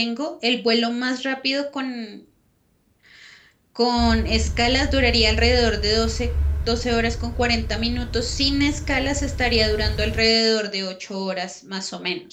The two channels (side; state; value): both; identical; correlation 1.00